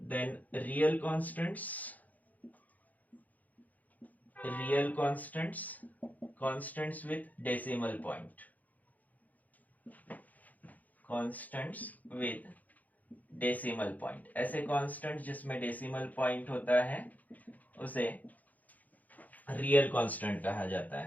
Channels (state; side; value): late; right; 0.079 ms